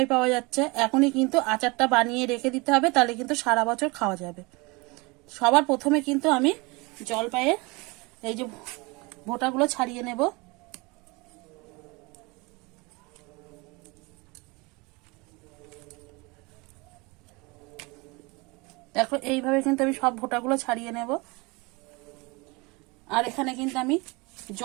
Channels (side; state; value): left; quieter; 26.3 dB